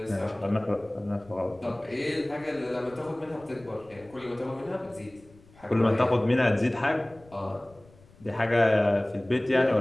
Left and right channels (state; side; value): noise; left; rumble, 26 dB below the sound